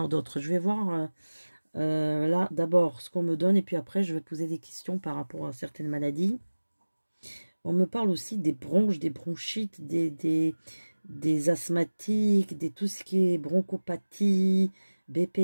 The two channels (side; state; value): both; inverted; correlation -1.00